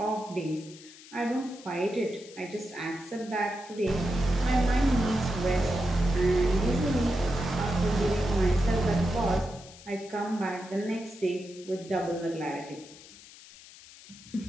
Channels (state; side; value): noise; left; hiss, 19 dB below the sound